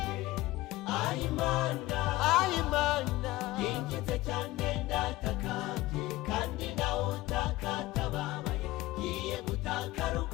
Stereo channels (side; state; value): right; quieter; 18.2 dB